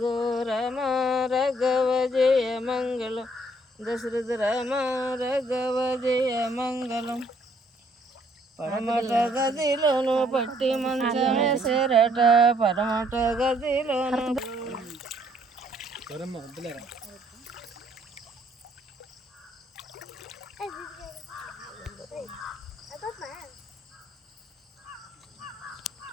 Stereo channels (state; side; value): normal; both; correlation 0.66